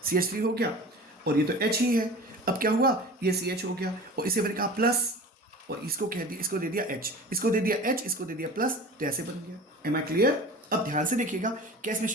CH3 हो गया, और ये तो H ही है। अब क्या हुआ, ये CH हो गया, और इसे मैंने कहा प्लस, और इसको कह दिया, इसको दे दिया H, इसको दे दिया H, इसको दे दिया प्लस, तो ऐसे बन गया। Am I clear? अब ध्यान से देखिएगा, क्या इसमें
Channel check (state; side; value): normal; both; correlation 0.37